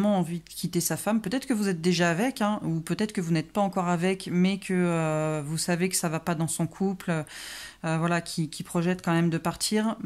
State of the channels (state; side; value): identical; both; correlation 1.00